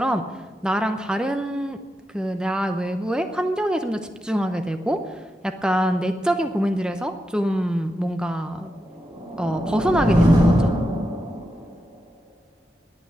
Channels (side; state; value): both; normal; correlation 0.87